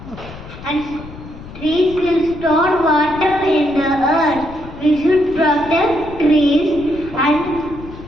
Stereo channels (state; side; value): noise; left; rumble, 15 dB below the sound